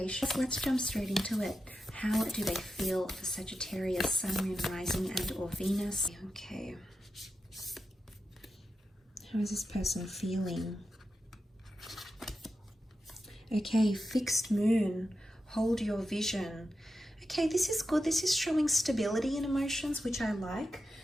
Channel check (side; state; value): both; normal; correlation 0.89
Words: Let's jump straight into it. How do they feel for Sagittarius, Sun, Moon, Rising and or Venus? Okay. How is this person feeling? Okay, fixed moon. Hold your vision. Okay, this is good. This is showing stability in emotions, which I like.